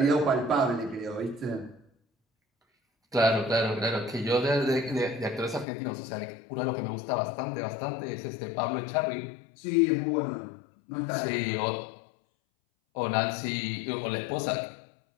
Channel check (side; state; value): right; drops out; at 5.7 s